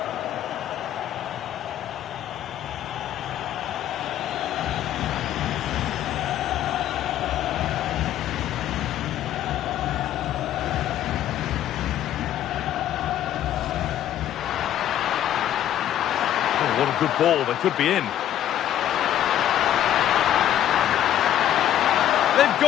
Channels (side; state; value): right; quieter; 11.6 dB